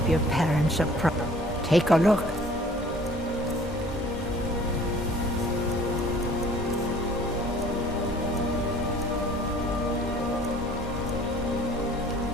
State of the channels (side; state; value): both; normal; correlation 0.52